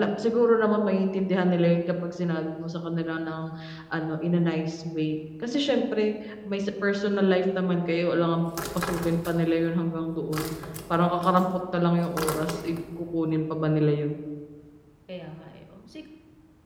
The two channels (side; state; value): both; identical; correlation 1.00